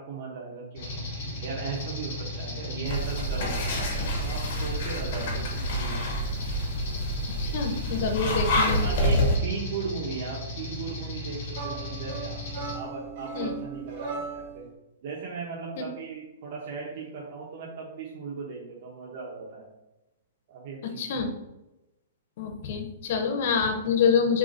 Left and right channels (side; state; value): both; inverted; correlation -0.34